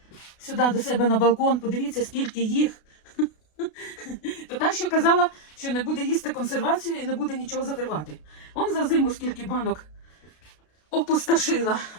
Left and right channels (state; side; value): late; right; 33 ms